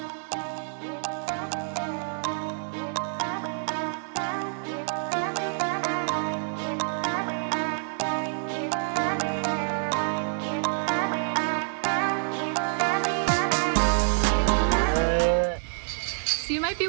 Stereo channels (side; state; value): left; silent; 60 dB below the other